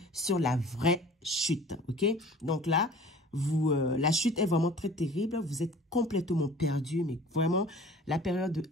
sur la vraie chute, ok? Donc là, la chute est vraiment très terrible, vous êtes complètement perdu, mais vraiment, la période de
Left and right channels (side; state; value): both; normal; correlation 0.46